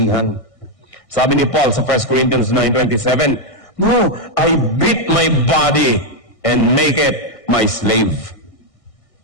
Sabi ni Paul sa 1 Corinthians 9:27, no, I beat my body and make it my slave.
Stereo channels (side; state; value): right; late; 1.6 ms